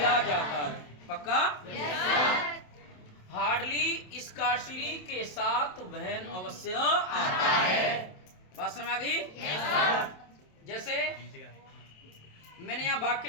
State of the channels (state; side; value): late; right; 27 ms